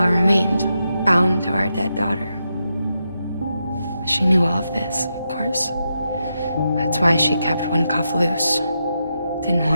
remained, bound to our dead daughter. She knew all of this, of course. That's why she kept one cuff loose. Didn't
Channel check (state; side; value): inverted; both; correlation -0.85